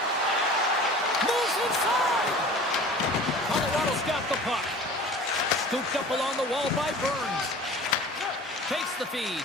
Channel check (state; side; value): normal; both; correlation 0.42